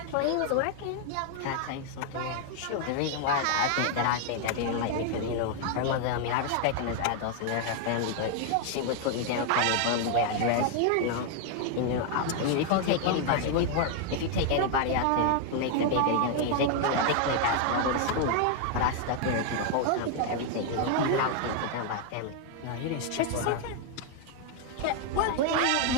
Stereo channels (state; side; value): different; both; correlation 0.00